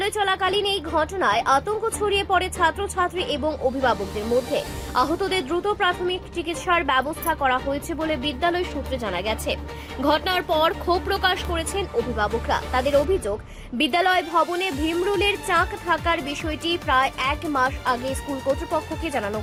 চলাকালীন এই ঘটনায় আতঙ্ক ছড়িয়ে পড়ে ছাত্রছাত্রী এবং অভিভাবকদের মধ্যে। আহতদের দ্রুত প্রাথমিক চিকিৎসার ব্যবস্থা করা হয়েছে বলে বিদ্যালয় সূত্রে জানা গেছে। ঘটনার পর ক্ষোভ প্রকাশ করেছেন অভিভাবকরা। তাদের অভিযোগ, বিদ্যালয় ভবনে ভীমরুলের চাক থাকার বিষয়টি প্রায় ১ মাস আগে স্কুল কর্তৃপক্ষকে জানানো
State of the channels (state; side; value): identical; both; correlation 1.00